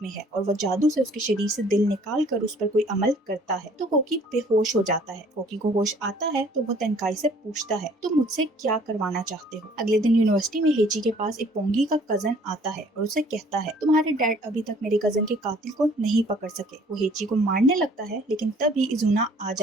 में है, और वह जादू से उसके शरीर से दिल निकाल कर उस पर कोई अमल करता है तो कोकी बेहोश हो जाता है। कोकी को होश आता है तो वह टेनकाई से पूछता है तुम मुझसे क्या करवाना चाहते हो? अगले दिन यूनिवर्सिटी में हेची के पास इपोंगी का कजन आता है और उसे कहता है तुम्हारे डैड अभी तक मेरे कजन के कातिल को नहीं पकड़ सके। वो हेची को मारने लगता है लेकिन तभी इजुना आ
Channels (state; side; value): normal; both; correlation 0.56